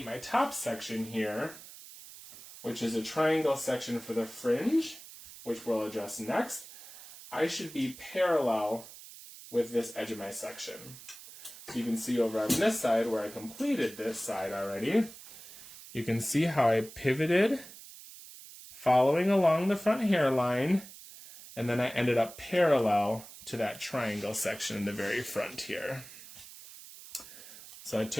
my top section here, which is a triangle section for the fringe, which we'll address next, I should be parallel with this edge of my section. So you can see over on this side where I completed this side already, you can see how I pivoted following along the front hairline, and then I ended up parallel to that triangle section in the very front here. So I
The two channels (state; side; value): noise; right; hiss, 16 dB below the sound